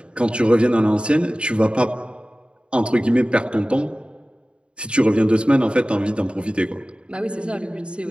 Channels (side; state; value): left; late; 0.055 ms